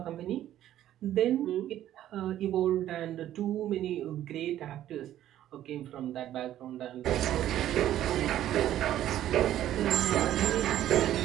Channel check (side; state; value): left; quieter; 12.4 dB